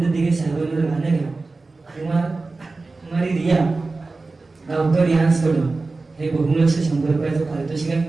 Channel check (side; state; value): left; quieter; 3.6 dB